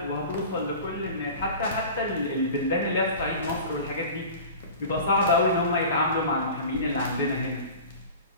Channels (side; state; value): both; inverted; correlation -0.37